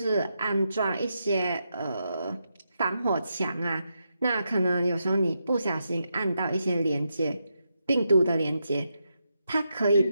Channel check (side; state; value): both; inverted; correlation -0.84